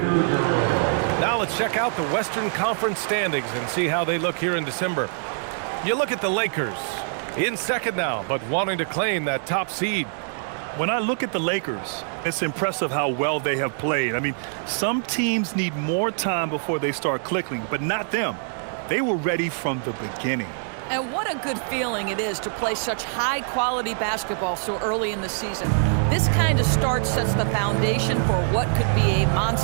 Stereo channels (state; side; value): silent; left; digital silence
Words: Now let's check out the Western Conference standings and see how they look here in December. You look at the Lakers, in second now, but wanting to claim that top seed. When I look at the Lakers, it's impressive how well they have played. I mean, some teams need more time before they start clicking, but not them. They were ready from the beginning. And what a good feeling it is to play such high-quality basketball so early in the season. This kind of start sets the foundation for what could be a